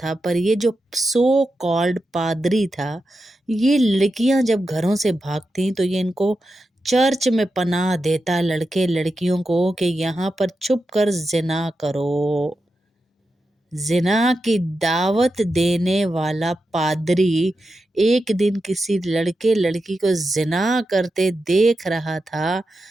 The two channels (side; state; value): both; normal; correlation 0.89